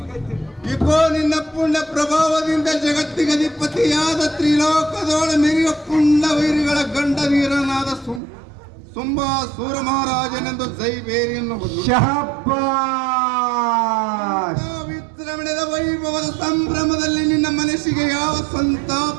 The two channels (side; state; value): left; drops out; at 8.2 s